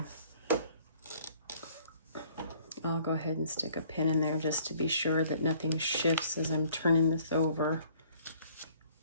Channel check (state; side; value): inverted; both; correlation -0.58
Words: I'll go ahead and stick a pin in there just to be sure that nothing shifts as I'm turning this over.